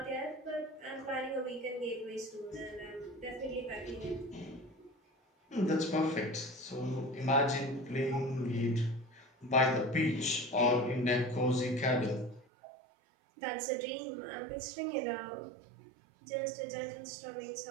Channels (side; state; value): left; drops out; at 12.5 s